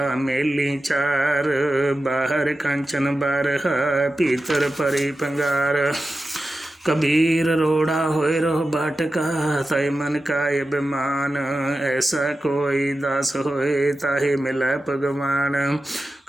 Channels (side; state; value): both; normal; correlation 0.93